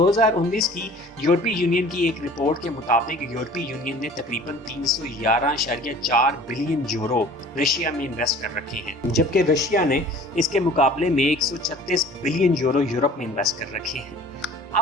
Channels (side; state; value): both; normal; correlation 0.47